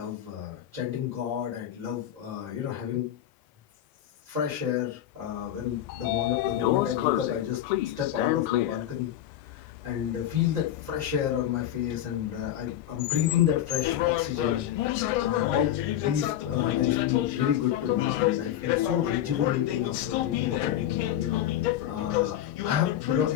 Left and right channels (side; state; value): right; quieter; 11.6 dB